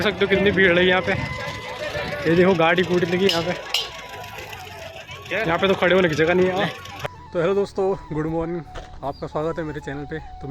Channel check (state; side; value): identical; both; correlation 1.00